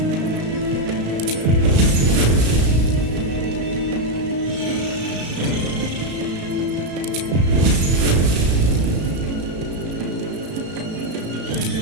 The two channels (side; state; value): left; late; 34 ms